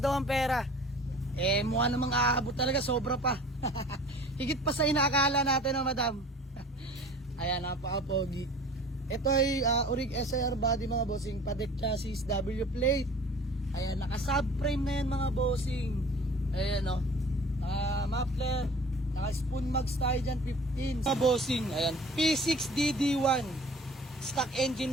ang pera. Eh mukha namang aabot talaga. Sobra pa. Higit pa sa inaakala natin no madam. Ayan, napaka-pogi. Ito ay Urig SIR body mga bossing. Patek chassis, W plate. Ayan, naka-subframe na yan mga bossing. Ayan o. Muffler. Naka-spoon mags tayo dyan, 15. Mga bossing, ayan. P6DD1. Stock engine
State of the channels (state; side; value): normal; both; correlation 0.45